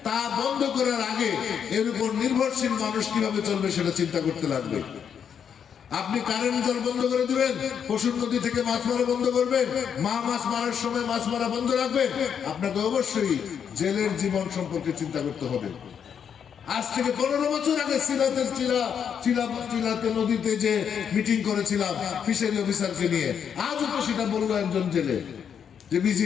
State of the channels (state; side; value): quieter; right; 7.8 dB